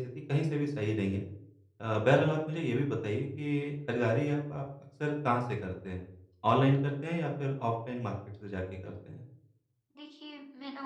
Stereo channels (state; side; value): identical; both; correlation 1.00